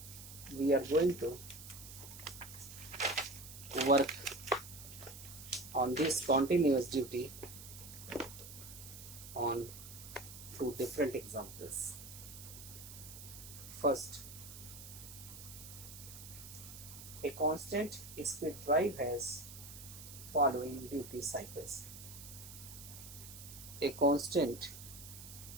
we are going to work on this continuous duty on two different examples. First, a constant speed drive has following duty cycles. A constant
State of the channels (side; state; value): right; noise; hiss, 13 dB below the sound